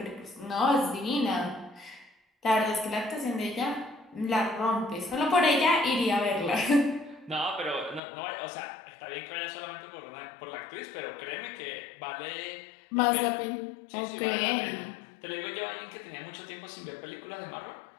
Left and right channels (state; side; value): drops out; right; at 8.0 s